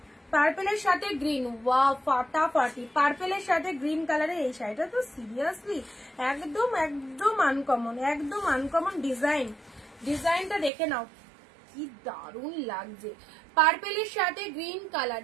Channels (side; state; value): left; drops out; at 10.7 s